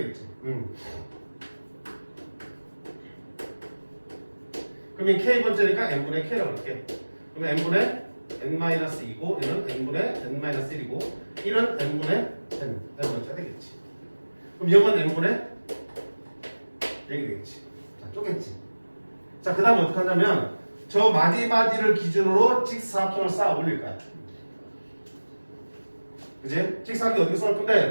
그러면 k번째니까 n분의 k라고 할게. 그러면 n분의 n-2고 얘는 n분의 n-1이고 1은 n분의 n번째가 되겠지. 그럼 0은 n분의 0이 되겠지. 자, 쪼갰지. 자, 그 다음에 어떻게 하냐면 저 마디마디를 기준으로 직사각형을 쌓아 올릴 거야. 그지? 직사각형 어떻게 쌓을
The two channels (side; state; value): both; inverted; correlation -1.00